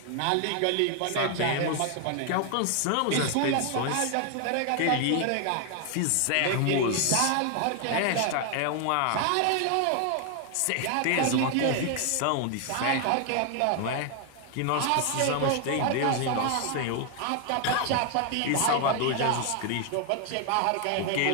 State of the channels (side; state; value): both; different; correlation 0.00